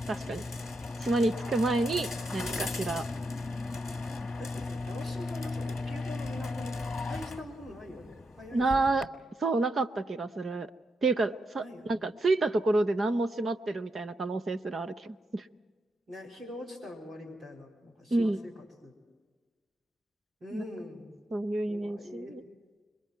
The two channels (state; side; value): normal; both; correlation 0.84